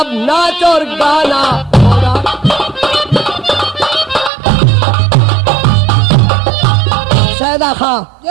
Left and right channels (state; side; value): drops out; left; at 4.3 s